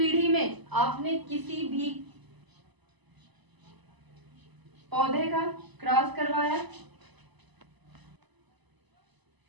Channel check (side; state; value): left; late; 1.0 ms